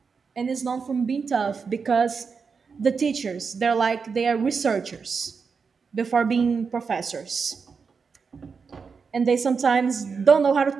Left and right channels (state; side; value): quieter; left; 5.4 dB